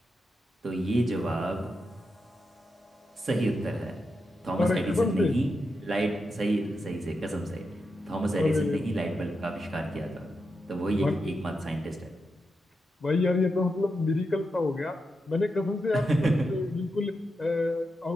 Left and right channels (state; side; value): normal; both; correlation 0.86